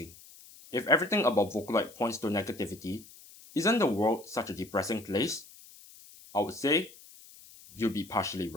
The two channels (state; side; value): noise; left; hiss, 21 dB below the sound